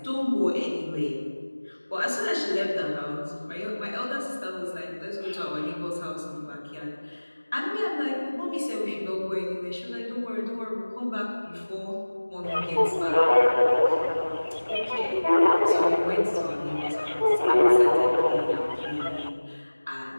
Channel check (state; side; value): inverted; both; correlation -1.00